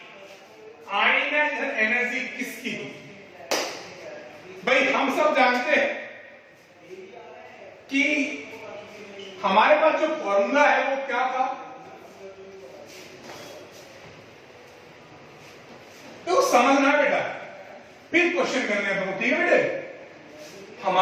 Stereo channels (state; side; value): identical; both; correlation 1.00